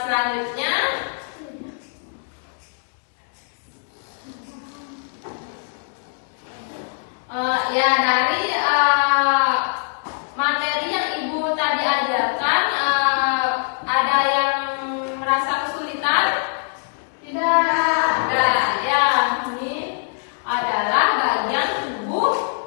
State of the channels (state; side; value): silent; right; 63 dB below the other